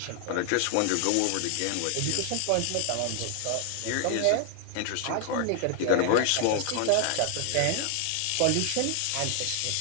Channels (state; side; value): different; both; correlation 0.00